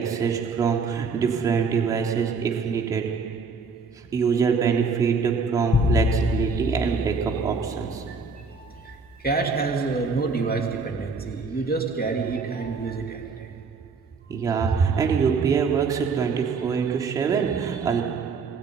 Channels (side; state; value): left; quieter; 4.6 dB